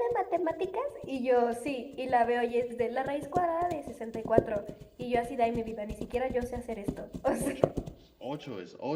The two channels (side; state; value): both; identical; correlation 1.00